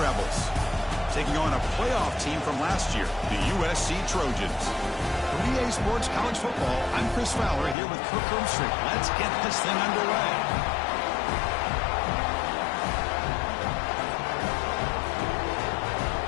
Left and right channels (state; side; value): drops out; right; at 7.8 s